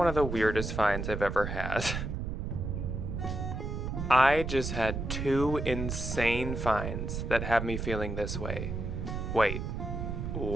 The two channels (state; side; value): noise; right; rumble, 4 dB below the sound